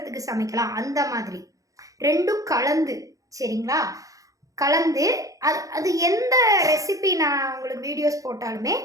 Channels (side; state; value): left; late; 0.16 ms